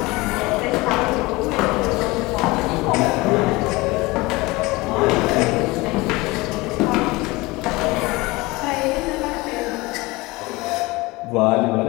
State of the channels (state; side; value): quieter; right; 22.2 dB